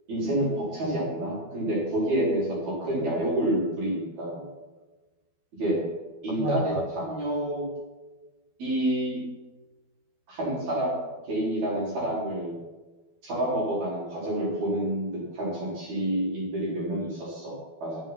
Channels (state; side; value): late; left; 12 ms